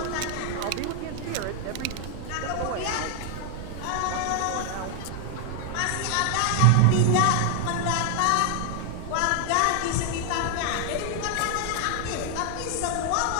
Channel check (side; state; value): both; different; correlation 0.00